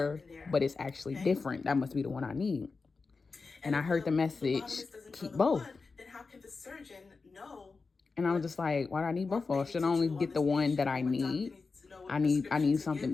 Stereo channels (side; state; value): right; quieter; 4.4 dB